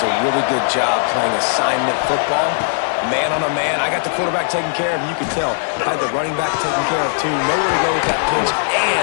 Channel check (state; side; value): silent; right; 67 dB below the other